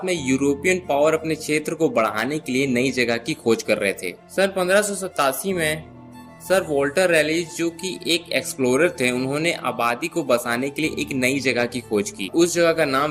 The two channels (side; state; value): both; identical; correlation 1.00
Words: में यूरोपियन पावर अपने क्षेत्र को बढ़ाने के लिए नई जगह की खोज कर रहे थे। सन 1587 में सर वॉल्टर रैलीज, जो कि एक एक्सप्लोरर थे, उन्होंने आबादी को बसाने के लिए एक नई जगह की खोज की। उस जगह का